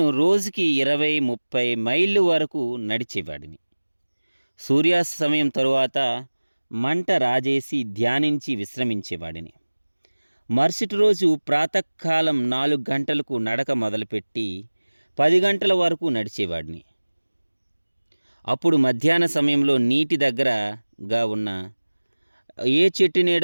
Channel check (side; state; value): both; inverted; correlation -1.00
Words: రోజుకి 20-30 మైళ్ళు వరకు నడిచేవాడిని. సూర్యాస్తమయం తరువాత మంట రాజేసి ధ్యానించి విశ్రమించేవాడిని. మరుసటి రోజు ప్రాతకాలం 4 గంటలకు నడక మొదలుపెట్టి 10 గంటల వరకు నడిచేవాడిని. అప్పుడు మధ్యాహ్న సమయంలో నీటి దగ్గరగా ఉన్న ఏ చెట్టు